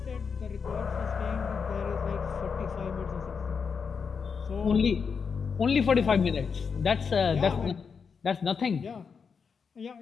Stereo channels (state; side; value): quieter; right; 5.9 dB